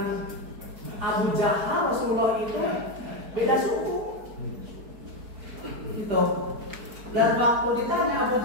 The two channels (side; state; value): left; late; 4.6 ms